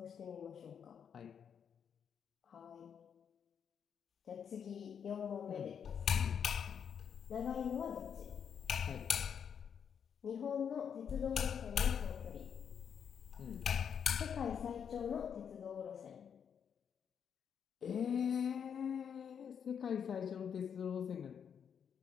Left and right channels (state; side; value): quieter; right; 7.6 dB